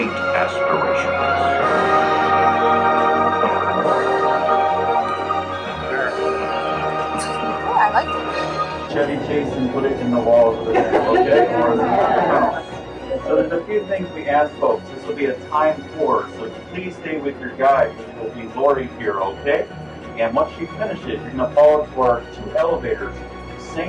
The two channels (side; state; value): both; identical; correlation 1.00